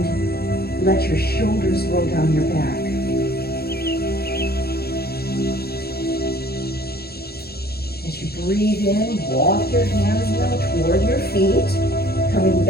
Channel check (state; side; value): late; right; 0.46 ms